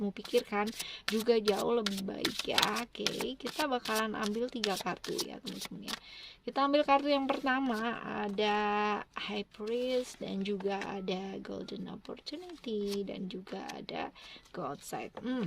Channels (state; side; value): identical; both; correlation 1.00